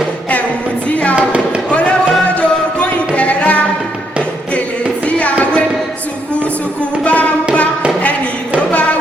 ẹ̀wù tí a wọ̀ olówó jogún ìdẹ̀ra, gèlè tí a wé ṣùkùṣùkù bá ń bá ẹni tó bá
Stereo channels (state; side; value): normal; both; correlation 0.75